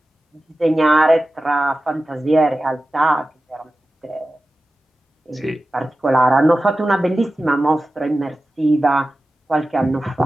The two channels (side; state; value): both; normal; correlation 0.94